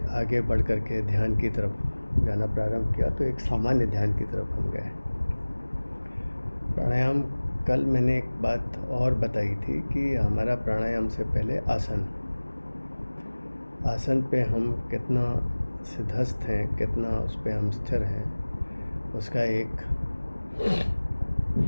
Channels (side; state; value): both; inverted; correlation -1.00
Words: आगे बढ़ कर के ध्यान की तरफ जाना प्रारंभ किया, तो एक सामान्य ध्यान की तरफ हम गए। प्राणायाम, कल मैंने एक बात और बताई थी कि हमारा प्राणायाम से पहले आसन पे हम कितना सिद्धस्थ हैं, कितना उस पे हम स्थिर हैं, उसका एक